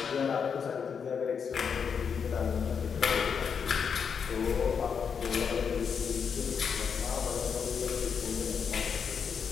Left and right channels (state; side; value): quieter; right; 6.6 dB